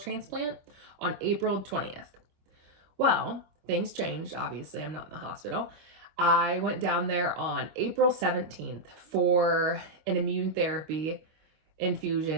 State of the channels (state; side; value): late; left; 25 ms